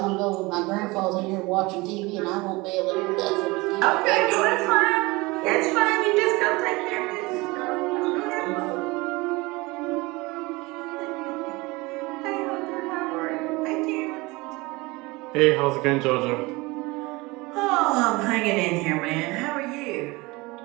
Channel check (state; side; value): quieter; left; 23.3 dB